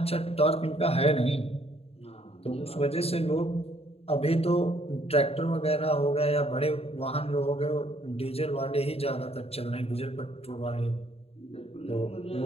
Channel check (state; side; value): late; right; 0.29 ms